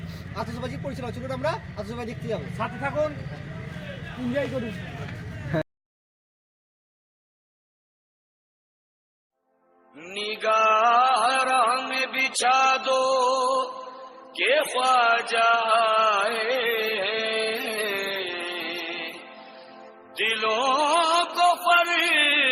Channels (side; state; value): both; identical; correlation 1.00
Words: আতশবাজি পরিচালনা। চলুন আমরা আতশবাজি দেখতে যাবো, সাথে থাকুন, এনজয় করুন। निगाह में बिछा दो के ख्वाजा आए, दिलों को